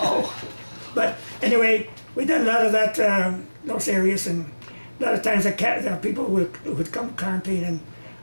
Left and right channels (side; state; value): both; inverted; correlation -1.00